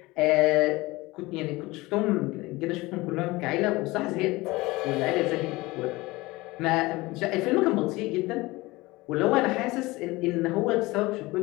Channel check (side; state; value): right; quieter; 21.1 dB